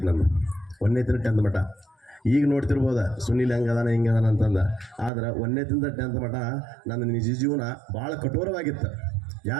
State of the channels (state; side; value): drops out; left; at 5.1 s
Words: ನಂದು. 1ನೇದರಿಂದ 10th ಮಟ್ಟ. ಈಗ ನೋಡ್ತಿರ್ಬೋದ ಸುನೀಲ್ ಹೆಂಗದಾನ ಹಿಂಗದಾನ ಅಂತಂದು. ಆದ್ರೆ 1ನೇದರಿಂದ 10th ಮಟ್ಟ ನನ್ನ ನಿಜ ಜೀವನ ಭಾಳ ಕಠೋರವಾಗಿತ್ತು.